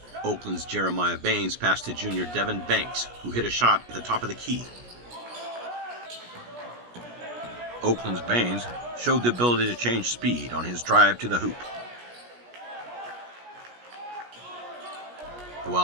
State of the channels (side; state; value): left; late; 17 ms